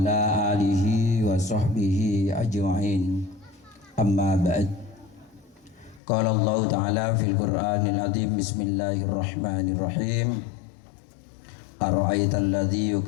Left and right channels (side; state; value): right; drops out; at 6.0 s